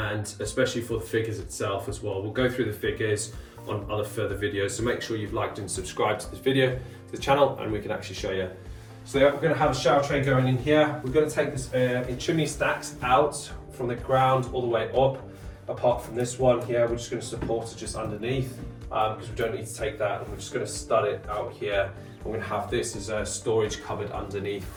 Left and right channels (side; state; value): both; identical; correlation 1.00